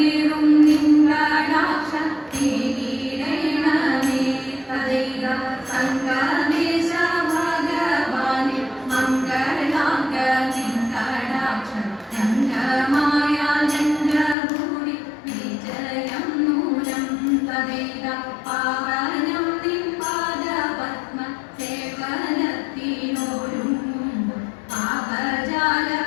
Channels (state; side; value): drops out; right; at 14.4 s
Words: നിൻകടാക്ഷ തീരീടണമേ തദൈവ സംഗമേശ ഭഗവാനെ മംഗളാംഗ നിൻകടാക്ഷ രംഗമായ രംഗഭൂമി വിജയം നൂനം തദൈവ പാവനം നിൻ പാദപത്മ സേവനത്തിനോരുങ്ങുമ്പോൾ പാപജാല